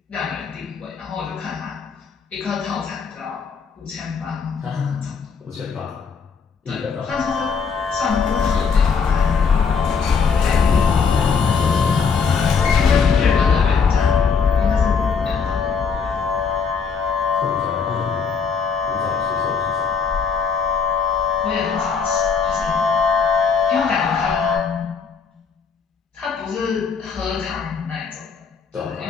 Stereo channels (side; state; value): right; quieter; 5.8 dB